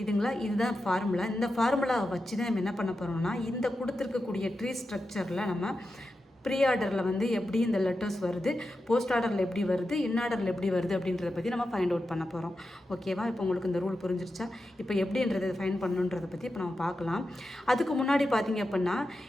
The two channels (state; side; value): normal; both; correlation 0.90